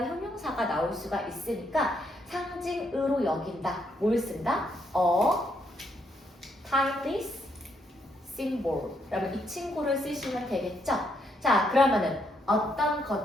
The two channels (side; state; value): both; normal; correlation 0.75